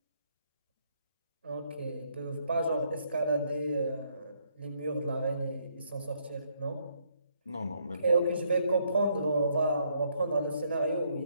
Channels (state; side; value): inverted; both; correlation -0.72